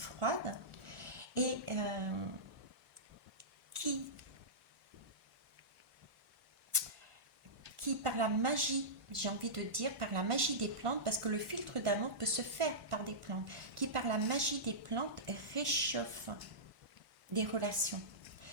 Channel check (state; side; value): late; left; 1.5 ms